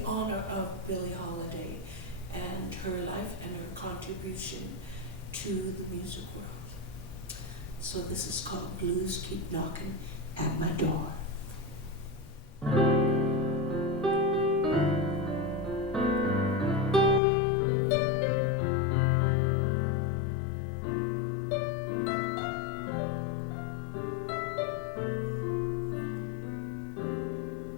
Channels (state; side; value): drops out; right; at 17.2 s